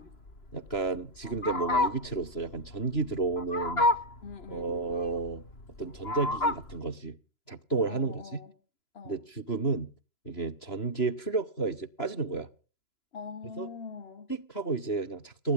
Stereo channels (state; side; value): late; right; 3.0 ms